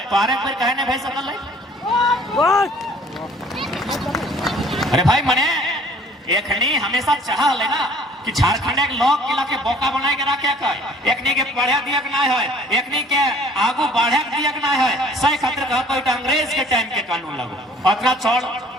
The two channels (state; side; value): normal; both; correlation 0.54